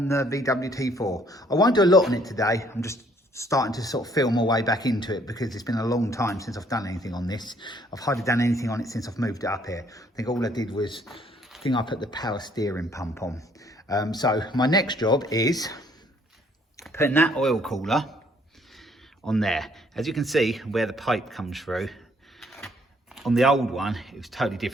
the Veedub T4. I won't do a lot on it today. I'm just starting to sort of feel my way back into it because it's been a long time since I've done anything on this. I've hardly done anything on it since I've moved it up here. I think all I did was, I put the power steering pump on. So my next job is putting that oil cooler on there. As you can see where the pipe comes through, on the old one, it was totally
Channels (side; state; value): both; normal; correlation 0.64